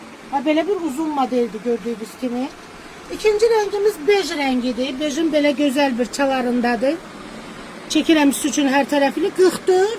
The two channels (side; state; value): both; identical; correlation 1.00